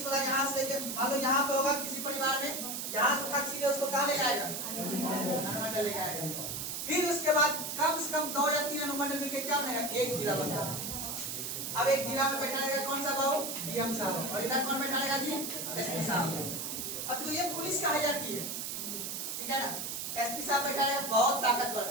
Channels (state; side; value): noise; right; hiss, 4 dB below the sound